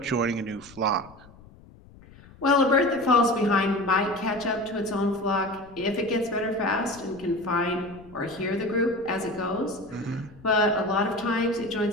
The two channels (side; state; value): left; noise; rumble, 23 dB below the sound